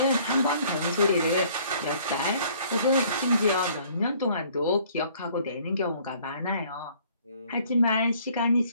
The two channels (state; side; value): inverted; both; correlation -0.58